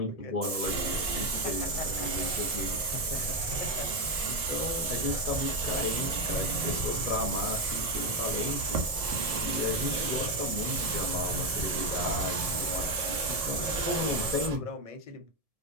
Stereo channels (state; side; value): late; left; 1.7 ms